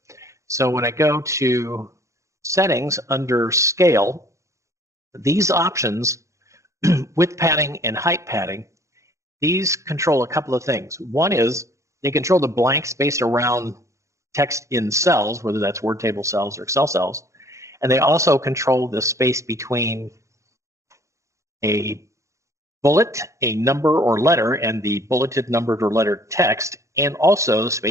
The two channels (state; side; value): late; left; 0.15 ms